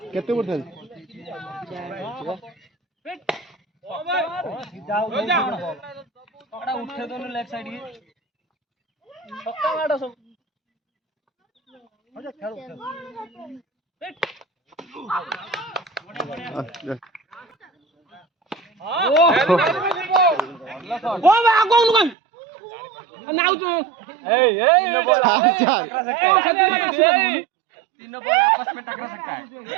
केते बोल उठे दोनों लेफ्ट साइड के छक्का मारो सब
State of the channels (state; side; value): drops out; left; at 22.2 s